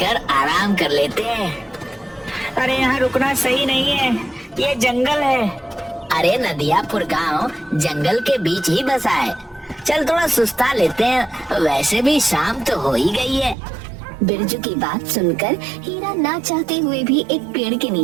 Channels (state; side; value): drops out; left; at 13.6 s